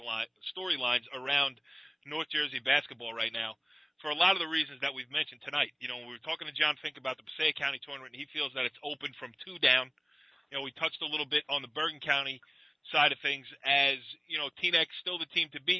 around North Jersey basketball right now for a lot of the reasons that we've mentioned tonight. We were talking to John Finke about the Passaic County tournament, and he feels that it's open from 2 down. We touched a little bit on the Bergen County side of things as, Teanec's still the team to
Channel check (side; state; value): both; identical; correlation 1.00